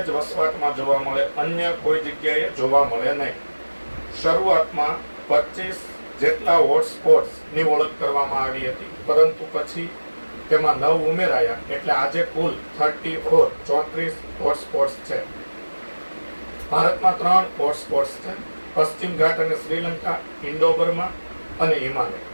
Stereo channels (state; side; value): inverted; both; correlation -1.00